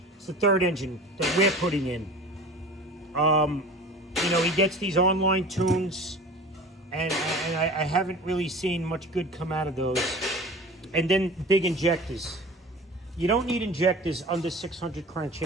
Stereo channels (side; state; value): both; normal; correlation 0.39